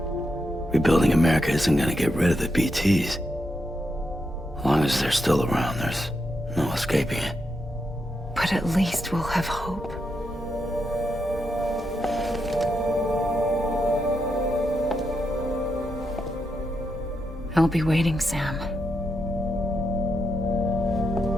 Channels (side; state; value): both; normal; correlation 0.83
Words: Rebuilding America isn't gonna get rid of the BTs. As long as they're still around, there's no escaping it. But at least we'll have hope. I'll be waiting, Sam.